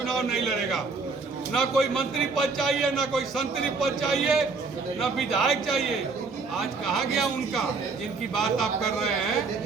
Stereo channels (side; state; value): left; quieter; 4.3 dB